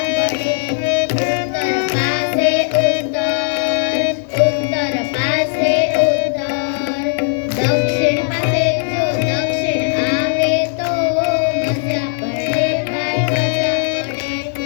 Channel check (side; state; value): right; silent; 66 dB below the other